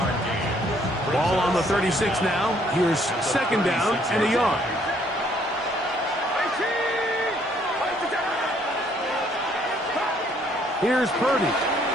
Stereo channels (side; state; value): both; normal; correlation 0.65